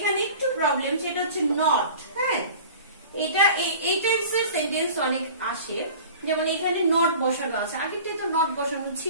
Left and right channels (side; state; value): both; inverted; correlation -0.42